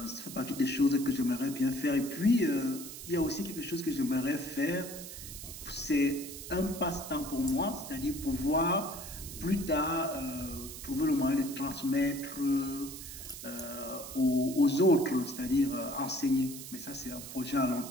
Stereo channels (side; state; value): right; noise; hiss, 11 dB below the sound